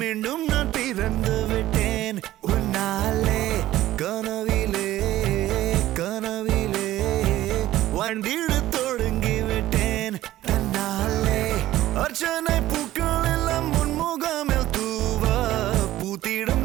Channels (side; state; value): left; quieter; 14.8 dB